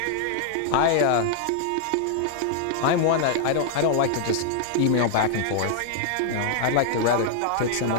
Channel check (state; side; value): different; both; correlation 0.00